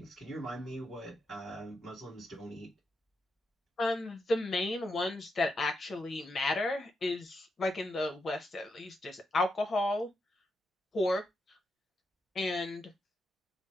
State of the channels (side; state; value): both; normal; correlation 0.84